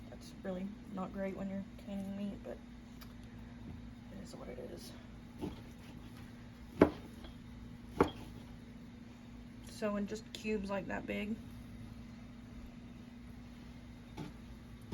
that's really not great when you're canning meat, but it is what it is. So in just cubes like that big.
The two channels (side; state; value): both; identical; correlation 1.00